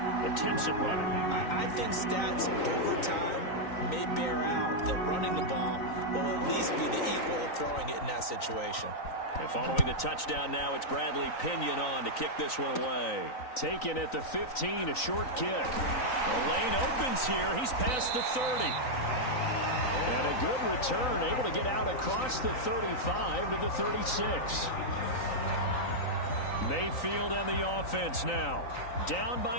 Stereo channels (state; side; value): late; right; 3.9 ms